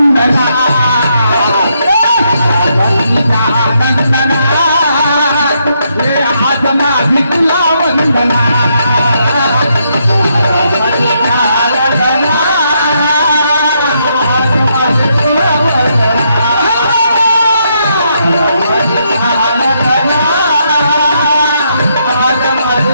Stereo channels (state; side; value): inverted; both; correlation -0.77